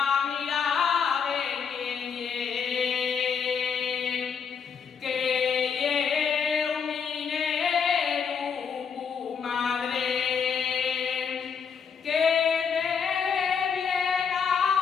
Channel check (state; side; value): quieter; right; 6.5 dB